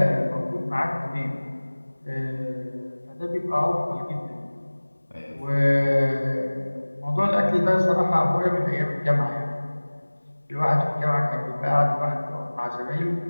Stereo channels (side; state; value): both; inverted; correlation -1.00